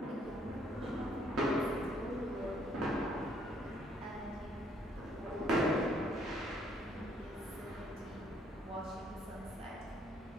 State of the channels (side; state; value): both; normal; correlation 0.66